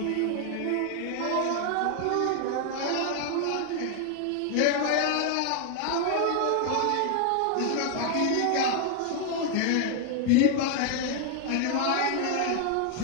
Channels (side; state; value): both; different; correlation 0.00